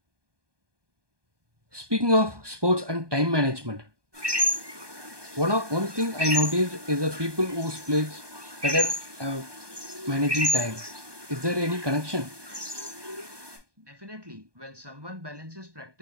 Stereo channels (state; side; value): late; left; 1.2 ms